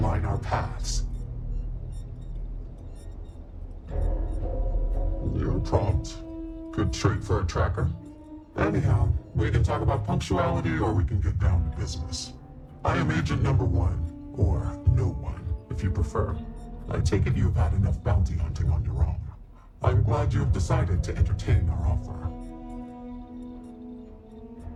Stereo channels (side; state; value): both; identical; correlation 1.00